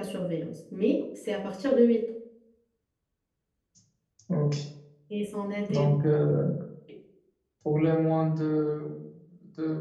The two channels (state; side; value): identical; both; correlation 1.00